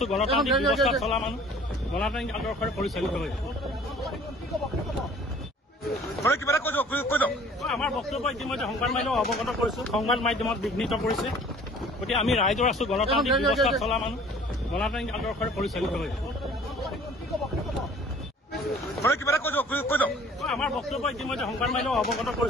গণতান্ত্ৰিক ব্যৱস্থা চলা মানুহ, গণতান্ত্ৰিক আদৰ্শৰে পৰিচালিত হৈ আমাৰ বক্তব্য ইতিমধ্যে সংবাদ মাধ্যমক অৱগত কৰিছো। সংবাদ মাধ্যমত বিঘ্নিত কৰিছে। গতিকে আমি ৰাইজৰ আছো, গণতান্ত্ৰিক ব্যৱস্থা চলা মানুহ, গণতান্ত্ৰিক আদৰ্শৰে পৰিচালিত হৈ আমাৰ বক্তব্য ইতিমধ্যে সংবাদ মাধ্যমক অৱগত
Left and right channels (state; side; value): normal; both; correlation 0.51